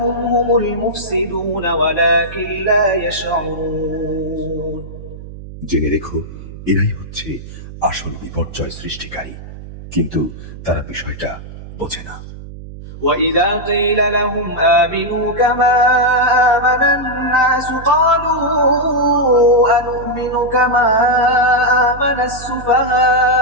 هم المفسدون ولكن لا يشعرون জেনে রেখো, এরাই হচ্ছে আসল বিপর্যয় সৃষ্টিকারী, কিন্তু তারা বিষয়টা বোঝে না। وإذا قيل لهم آمنوا كما آمن الناس قالوا أنؤمن كما آمن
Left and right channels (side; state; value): right; noise; hum, 14 dB below the sound